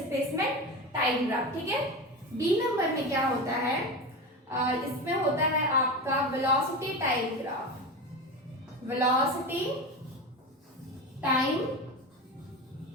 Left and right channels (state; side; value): normal; both; correlation 0.24